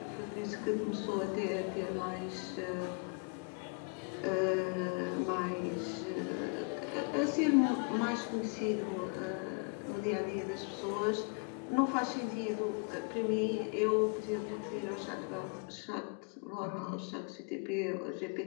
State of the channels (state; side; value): quieter; right; 35.0 dB